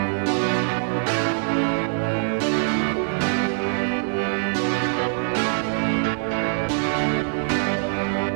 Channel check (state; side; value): silent; left; 60 dB below the other